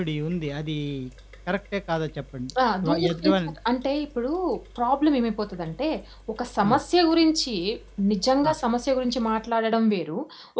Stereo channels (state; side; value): identical; both; correlation 1.00